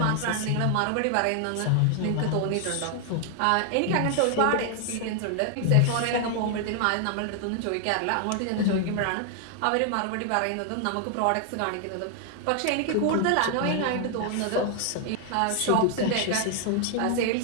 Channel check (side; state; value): both; different; correlation 0.00